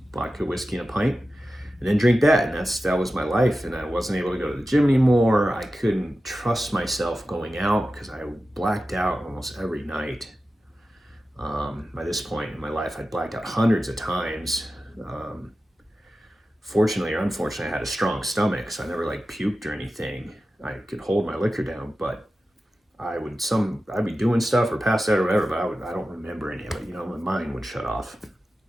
vodka, whiskey, and a pint, and then drink that. And that was my life. And I wasn't able to go to the gym anymore. I couldn't trust myself going out because I blacked out almost every night. By this point in my life, I'd blacked out hundreds of times. Fortunately or unfortunately, I had a strong stomach, so I never like puked or anything. I could hold my liquor down, but I'd be doing stuff or passed out or whatever, but I don't remember any of it. My mind would shut off.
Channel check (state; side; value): normal; both; correlation 0.93